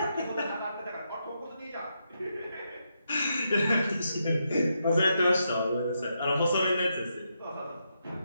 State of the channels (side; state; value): both; inverted; correlation -0.82